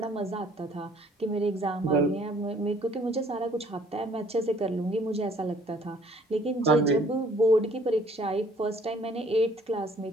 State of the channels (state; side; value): normal; both; correlation 0.59